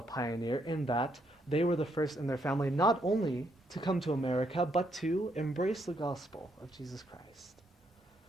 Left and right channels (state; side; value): normal; both; correlation 0.74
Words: pioneer in that they were the first in their family not only to come to America, but to embrace the gospel of Jesus Christ.